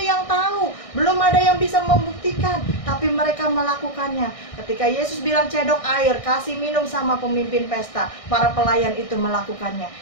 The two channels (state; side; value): late; right; 1.6 ms